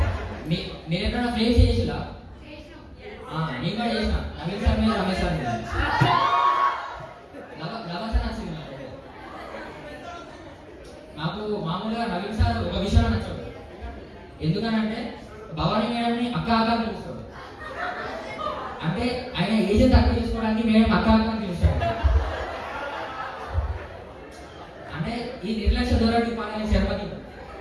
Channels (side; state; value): both; identical; correlation 1.00